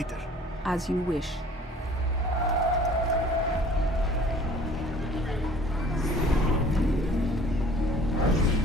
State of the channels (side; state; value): both; normal; correlation 0.51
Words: As you wish.